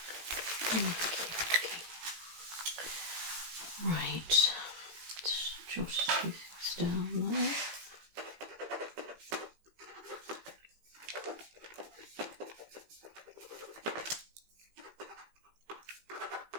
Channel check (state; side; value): late; left; 18 ms